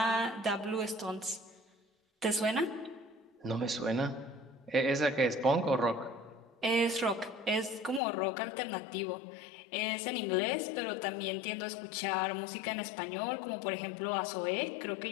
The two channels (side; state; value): right; drops out; at 8.0 s